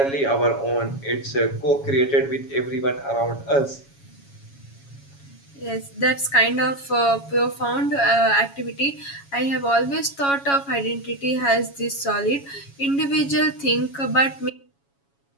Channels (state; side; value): late; right; 7.2 ms